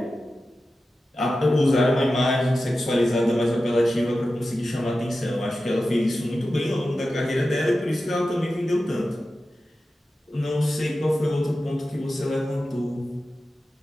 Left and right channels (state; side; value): normal; both; correlation 0.93